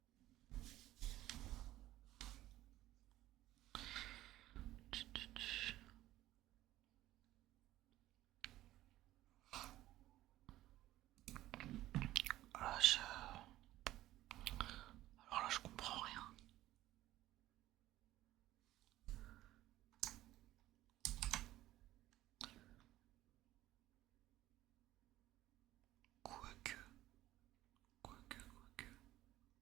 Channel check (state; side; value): quieter; left; 15.2 dB